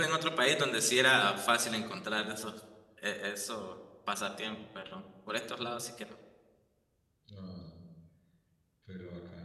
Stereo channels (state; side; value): identical; both; correlation 1.00